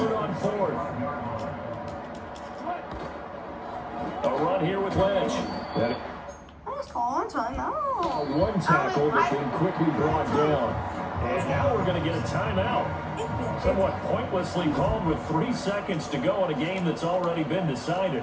on 4th. A run here with Lynch. One tackle that's been quickly brought down. And now we're going to get a timeout. Somewhat pointlessly called with 3 seconds to go in a game that's already been decided.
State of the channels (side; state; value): both; identical; correlation 1.00